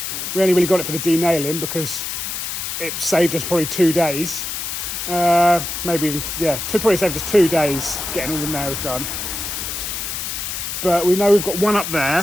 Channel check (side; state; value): left; noise; hiss, 4 dB below the sound